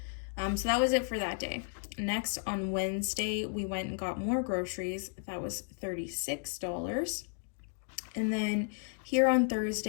So that was it for that day. Next, on Wednesday, we went and got more groceries. That was $36. And then here on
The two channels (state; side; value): silent; right; 55 dB below the other